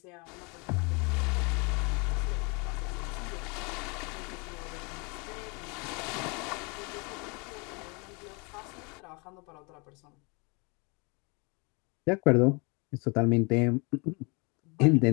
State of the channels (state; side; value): quieter; right; 30.4 dB